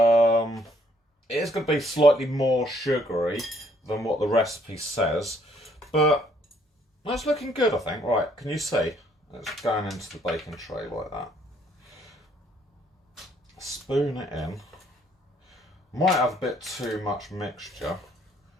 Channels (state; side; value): normal; both; correlation 0.66